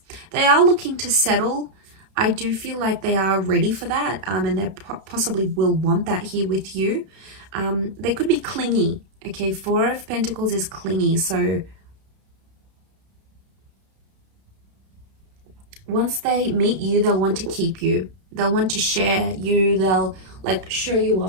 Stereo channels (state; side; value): late; left; 31 ms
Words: they are looking to settle. I do feel like they are ready for that, and they possibly will want that here with you. They could be clingy. Okay, Four of Pentacles is clingy, so once they meet you, they'll want to keep you. They'll want to share you. They'll like show you